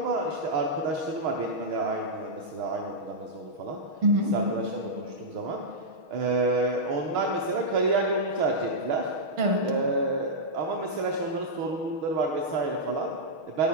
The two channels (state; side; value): late; left; 6.3 ms